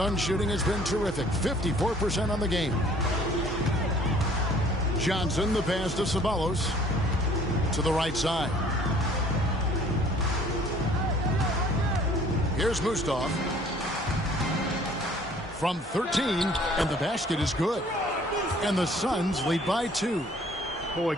shooting has been terrific. 54% on the game. Johnson, the pass to Ceballos. To the right side. Here's Mustaf. From 13, and the basket is good. And the Suns lead by 2. Boy,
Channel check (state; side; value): normal; both; correlation 0.55